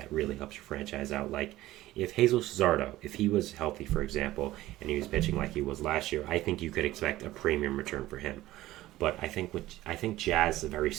really helps your franchise out. Like if Jesus Luzardo, if he was healthy, for example, and he was pitching like he was last year, I think you could expect a premium return for him. But I think Jazz is a very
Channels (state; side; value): quieter; left; 16.1 dB